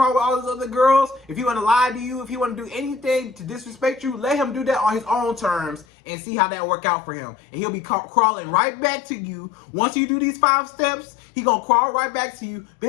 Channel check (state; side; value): drops out; right; at 5.9 s